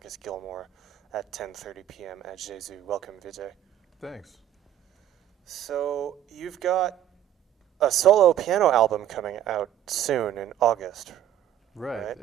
Gilmore at 10:30 p.m. at Jésus. Welcome, Vijay. Thanks. So you've got a solo piano album coming out soon in August. Right,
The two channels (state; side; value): quieter; left; 11.6 dB